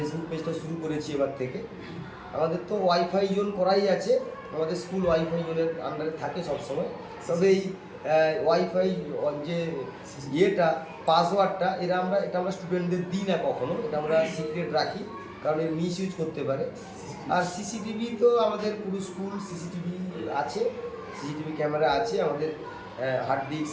পেজটা শুরু করেছি এবার থেকে। আমাদের তো ওয়াইফাই জোন করাই আছে, আমাদের স্কুল ওয়াইফাই জোনের আন্ডারে থাকে সবসময়। তবে এই ওয়াইফাই যে পাসওয়ার্ডটা এটা আমরা স্টুডেন্টদের দিই না কখনো, এটা আমরা সিক্রেট রাখি, কারণ এর মিস ইউজ করতে পারে। আর সিসিটিভি তো আমাদের পুরো স্কুল সিসিটিভি আছে, সিসিটিভি ক্যামেরা আছে, আমাদের হার্ড ডিস্ক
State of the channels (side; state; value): both; identical; correlation 1.00